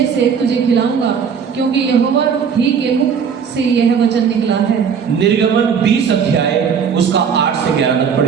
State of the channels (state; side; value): quieter; left; 6.8 dB